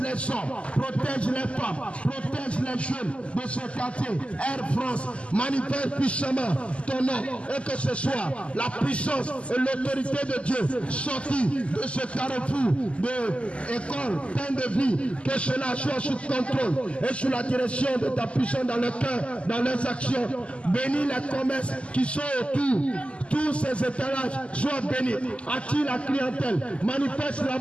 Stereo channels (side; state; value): right; late; 0.057 ms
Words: les hommes, protège les femmes, protège les jeunes de ce quartier. Air France, manifeste puissamment ton nom, et que ce soit la puissance et l'autorité de Dieu sortie de ce carrefour de école, plein de vie, que cela soit sous contrôle et sous la direction de ta puissance dans le cœur, dans leurs actions. Bénis les commerces qui sont autour, tous ces étalages soient bénis. Attire la clientèle, manifeste